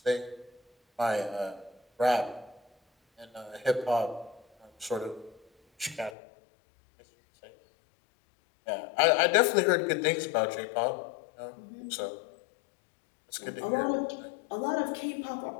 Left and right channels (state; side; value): drops out; right; at 6.2 s